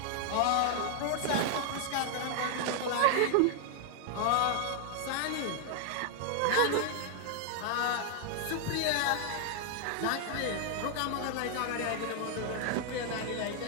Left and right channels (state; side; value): different; both; correlation 0.00